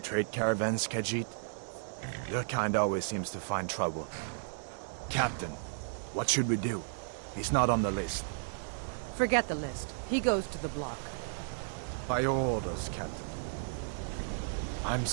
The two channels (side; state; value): left; silent; digital silence